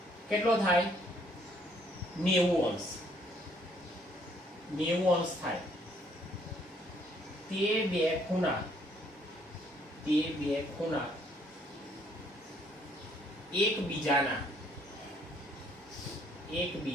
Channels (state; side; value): normal; both; correlation 0.66